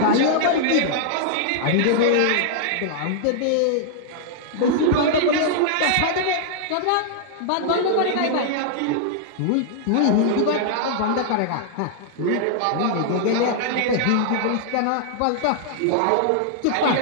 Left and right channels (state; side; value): different; both; correlation -0.01